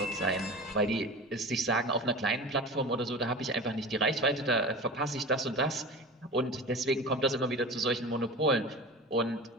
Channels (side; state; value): both; normal; correlation 0.33